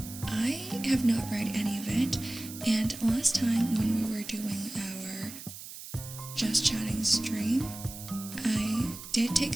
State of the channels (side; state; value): right; noise; hiss, 12 dB below the sound